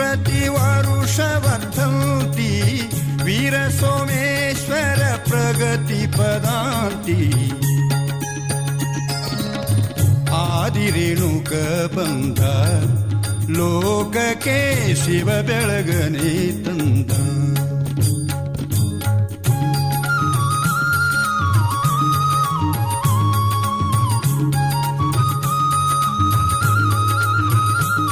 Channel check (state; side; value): identical; both; correlation 1.00